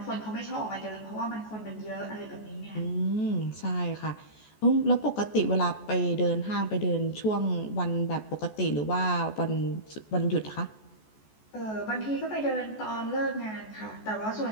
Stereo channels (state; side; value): late; right; 14 ms